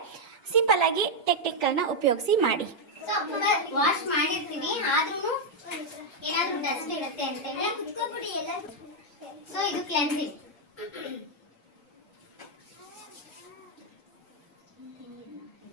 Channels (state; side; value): normal; both; correlation -0.01